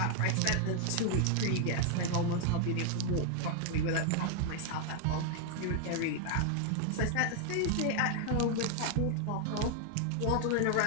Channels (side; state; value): both; different; correlation 0.00